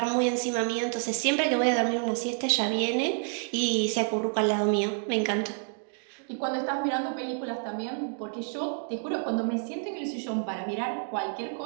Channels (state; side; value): silent; left; 56 dB below the other